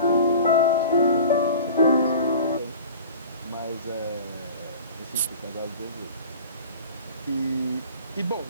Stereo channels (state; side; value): inverted; both; correlation -0.40